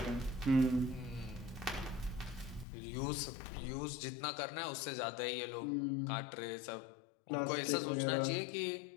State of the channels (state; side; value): drops out; right; at 2.7 s